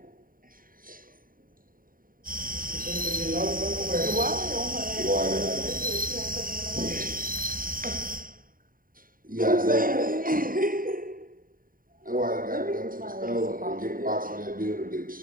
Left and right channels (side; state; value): left; late; 0.41 ms